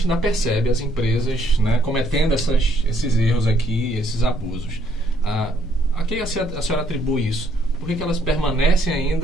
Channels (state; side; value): normal; both; correlation 0.69